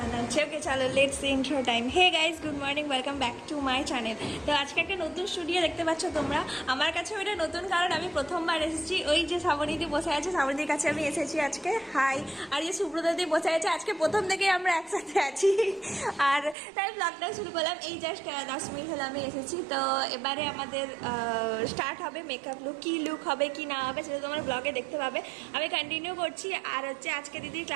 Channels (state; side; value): drops out; left; at 16.6 s